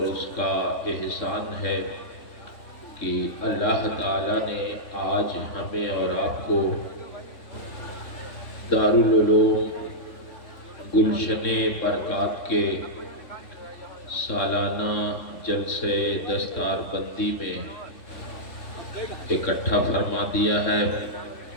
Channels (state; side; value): late; right; 3.6 ms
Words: اس کا احسان ہے کہ اللہ تعالیٰ نے آج ہمیں اور آپ کو دارالعلوم گلشن برکات کے سالانہ جلسے دستار بندی میں اکٹھا فرما دیا ہے۔